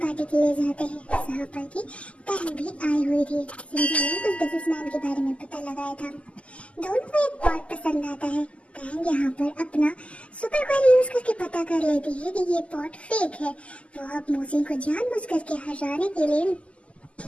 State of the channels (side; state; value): right; late; 0.059 ms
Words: के लिए जाते हैं जहाँ पर की टैन भी आई हुई थी। सिंजी ने उस बिजनेसमैन के बारे में पता लगाया था। दोनों को एक पॉट पसंद आता है। टैन यहाँ पर अपना सुपर क्वेरी यूज करके पता कर लेती है कि ये पॉट फेक है। वो अब मोजिन को जानबूझ करके हराने के लिए